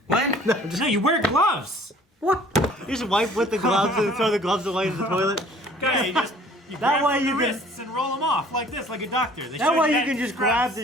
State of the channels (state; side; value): normal; both; correlation 0.53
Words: What? No, you wear gloves. What? You just wipe with the gloves and throw the gloves away in the toilet. Okay, you That grab way from you the can- wrists and roll them off like this, like a doctor. They That show way you that can just scrubs. grab